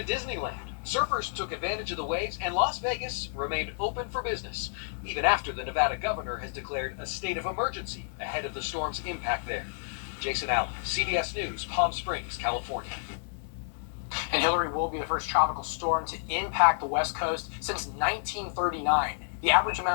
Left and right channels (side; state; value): right; silent; digital silence